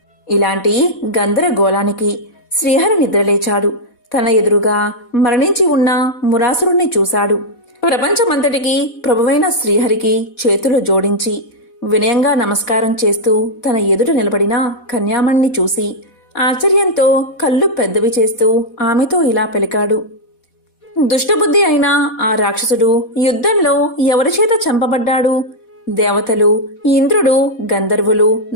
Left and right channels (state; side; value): late; right; 4.1 ms